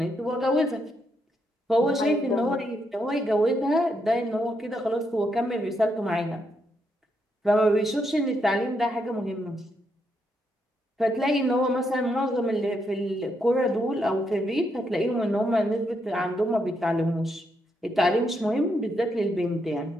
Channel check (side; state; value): both; normal; correlation 0.79